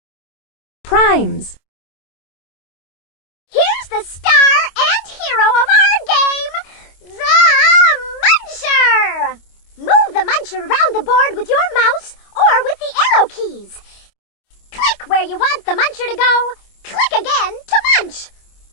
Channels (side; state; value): right; late; 25 ms